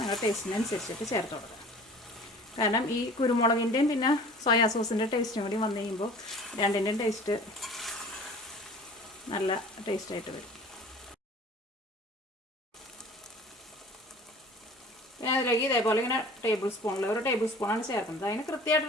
ടേസ്റ്റിനനുസരിച്ചിട്ട് ചേർത്ത് കൊടുക്കുക. കാരണം ഈ കുരുമുളകിൻ്റെയും പിന്നെ സോയാ സോസിൻ്റെ ടേസ്റ്റും കൂടി വന്നു കഴിയുമ്പോൾ രണ്ടിൻ്റെയും ടേസ്റ്റ് നല്ല ടേസ്റ്റായിട്ട് വരും. ഞാൻ അതിലേക്ക് ഇതേപോലെ ഇങ്ങനെ ഒരു ടേബിൾ സ്പൂണാണ് ചേർക്കുന്നത്. അതിന്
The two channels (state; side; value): normal; both; correlation 0.45